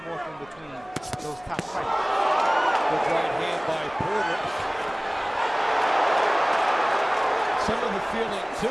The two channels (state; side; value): noise; right; hum, 26 dB below the sound